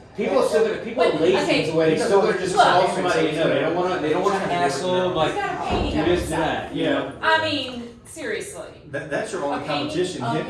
people are still gonna, people are But, lazy okay, to where they still gonna just call look. somebody, you know, they don't wanna hassle them, He's like, got a painting do of this, do himself. that, you know? I mean, seriously. That's your only Okay, competition. of Him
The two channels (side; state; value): both; identical; correlation 1.00